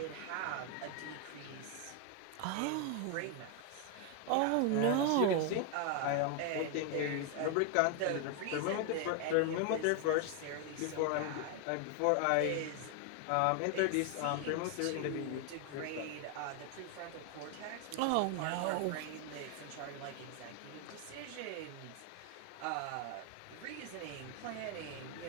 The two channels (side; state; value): both; different; correlation 0.00